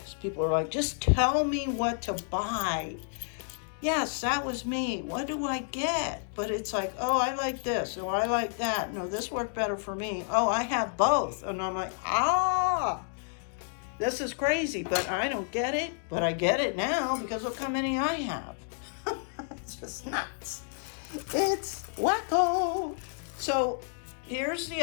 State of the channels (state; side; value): silent; right; 58 dB below the other